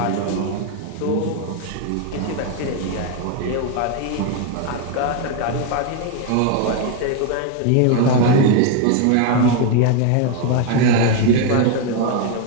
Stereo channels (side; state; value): both; different; correlation 0.01